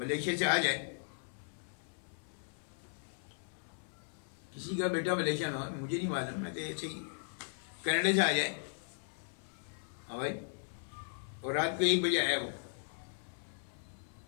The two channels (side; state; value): right; silent; 53 dB below the other